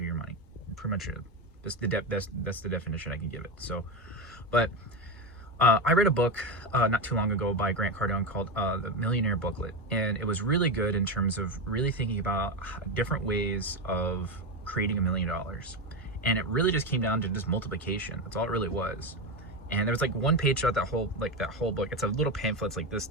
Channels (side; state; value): both; normal; correlation 0.15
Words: your money, pretty much it. That's the definition I can give it. So, but I read a book not too long ago by Grant Cardone called The Millionaire Booklet, and it was really good in terms of really thinking about different ways of creating $1 million. And it really just came down to just multiplication. That's all it really was. And there was like one page throughout that whole book. It's a little pamphlet. It's like this